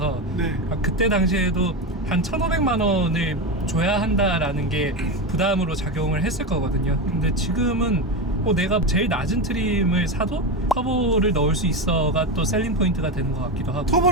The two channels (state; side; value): normal; both; correlation 0.17